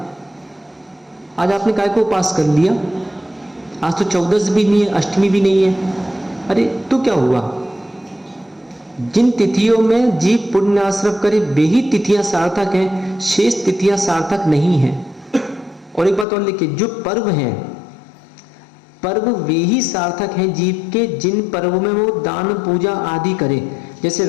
आज आपने काय को उपवास कर लिया, आज तो 14 भी नहीं है, अष्टमी भी नहीं है। अरे तो क्या हुआ? जिन तिथियों में जीव पुण्य आश्रम करे वे ही तिथियां सार्थक हैं, शेष तिथियां सार्थक नहीं हैं। और एक बात और लिखिए, जो पर्व हैं, पर्व वे ही सार्थक हैं जीव के जिन पर्वों में वो दान पूजा आदि करे। जैसे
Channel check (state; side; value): drops out; right; at 16.2 s